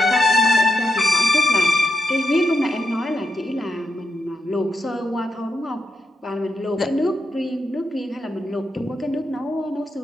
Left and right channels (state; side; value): normal; both; correlation 0.84